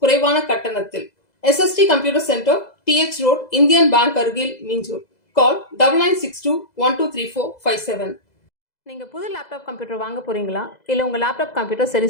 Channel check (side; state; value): right; late; 2.0 ms